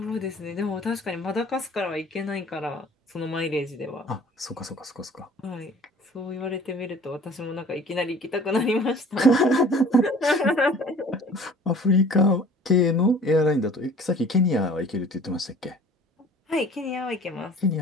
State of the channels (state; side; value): normal; both; correlation 0.49